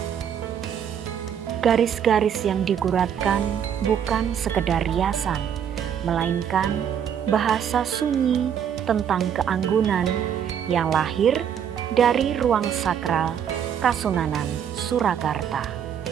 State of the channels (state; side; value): quieter; left; 8.5 dB